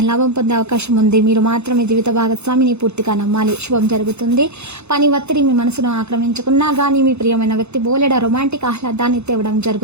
పొందే అవకాశం ఉంది. మీరు మాత్రం మీ జీవిత భాగస్వామిని పూర్తిగా నమ్మాలి. శుభం జరుగుతుంది. పని ఒత్తిడి మీ మనసును ఆక్రమించుకున్నా గానీ మీ ప్రియమైన వ్యక్తి బోలెడ రొమాంటిక్ ఆహ్లాదాన్ని తేవడం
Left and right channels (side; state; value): left; late; 0.81 ms